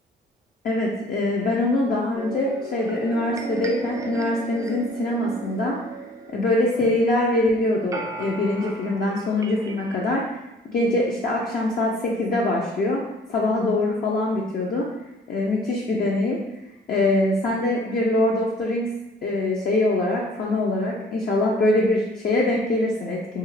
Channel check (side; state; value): both; normal; correlation 0.54